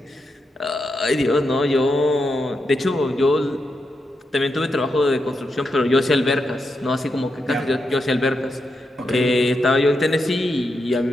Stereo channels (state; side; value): normal; both; correlation 0.85